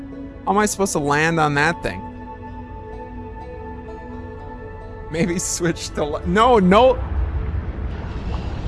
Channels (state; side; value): identical; both; correlation 1.00